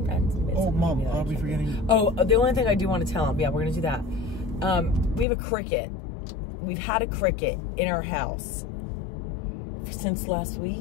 oh, Mom, are we forgetting? Oh, the only thing I do want to tell him, yeah, we're going to do that. We have a cricket. We've had a cricket in our house since last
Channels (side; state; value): right; drops out; at 5.2 s